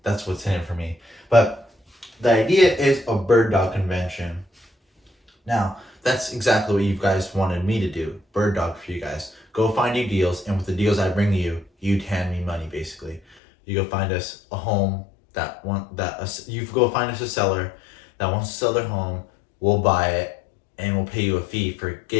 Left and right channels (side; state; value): right; drops out; at 13.4 s